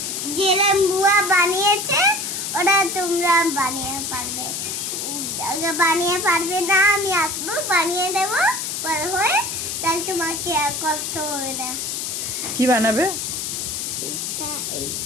যেরকম বুয়া বানিয়েছে ওরা তোমরা বানিয়ে পারবে। বানিয়ে পারবে না আমি আসবো বানিয়ে দেবো বড় হয়ে, তাহলে তোমাকে আর কষ্ট হবে না। কি বানাবে? এইটা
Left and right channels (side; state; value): left; noise; hiss, 3 dB below the sound